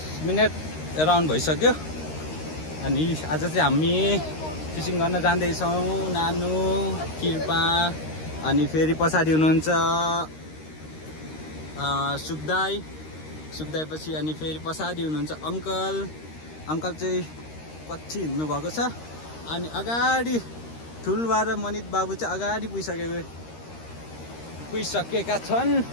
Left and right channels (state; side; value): late; right; 13 ms